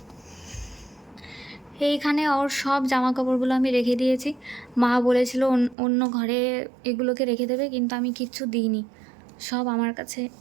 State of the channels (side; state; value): left; drops out; at 5.8 s